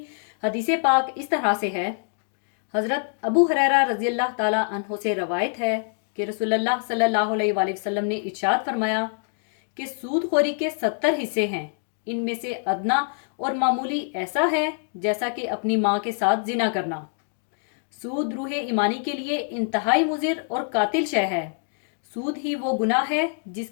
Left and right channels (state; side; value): silent; right; digital silence